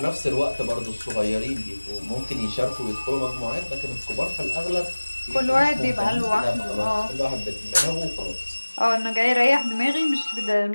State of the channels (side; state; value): both; inverted; correlation -1.00